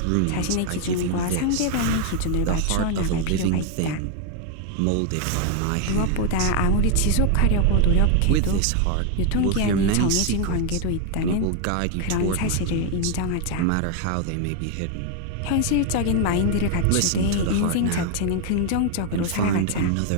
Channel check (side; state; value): both; different; correlation 0.01